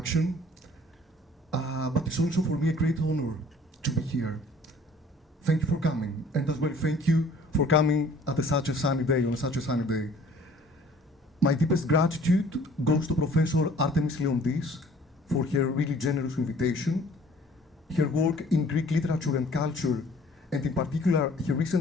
But it's also for me a great honor to be here. Thank you for coming, and as well thank you for coming at such a sunny day, on such a sunny day. My deepest gratitude goes to Professor Artemis Leondis for her really generous invitation. Her work in Greek literature and culture, and in particular her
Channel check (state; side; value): normal; both; correlation 0.53